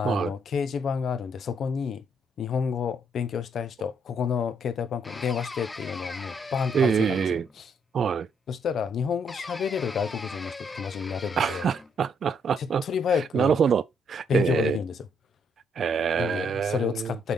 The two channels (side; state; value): both; normal; correlation 0.71